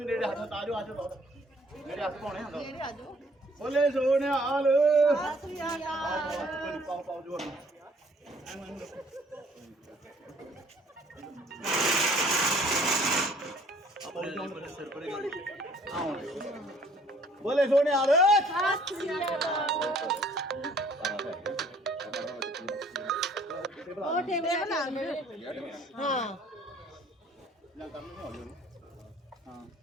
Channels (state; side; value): normal; both; correlation 0.58